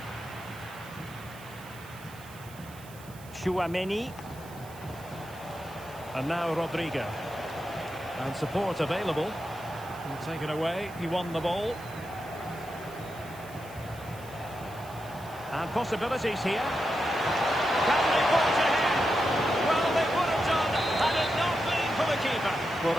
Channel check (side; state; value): right; noise; hiss, 20 dB below the sound